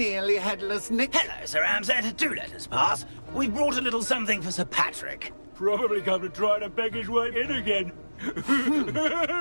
headless Nick? Hello, Sir Ramsett. Do let us pass. We brought a little something for Sir Patrick. Probably come to try to beg his way in again.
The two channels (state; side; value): inverted; both; correlation -1.00